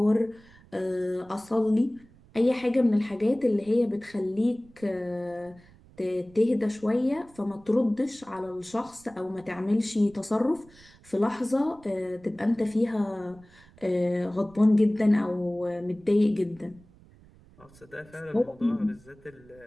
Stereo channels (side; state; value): right; noise; rumble, 26 dB below the sound